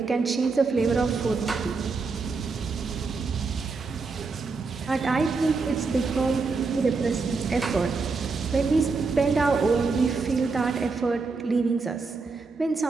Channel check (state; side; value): quieter; left; 4.3 dB